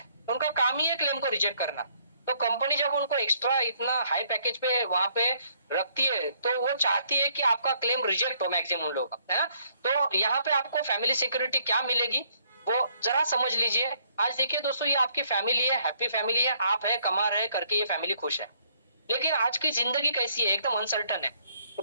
उनका काम ही है क्लेम को रिजेक्ट करना। तो कंपनी जब उनको एक्स्ट्रा इतना हाई पैकेज पे वहां पे रखती है, तो वो चाहती है कि आपका क्लेम रिजेक्ट हो मैक्सिमम लोग, है ना। तो यहाँ पे आपको फैमिली सिक्योरिटी क्या मिलेगी वो जरा समझ लीजिए। आज देखिए दोस्तों, ये आपकी फैमिली है, हैप्पी फैमिली है, आप है कमा रहे करके ये फैमिली खुश है। लेकिन आज की जिंदगी कैसी है? एकदम अनसर्टन है।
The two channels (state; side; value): inverted; both; correlation -0.67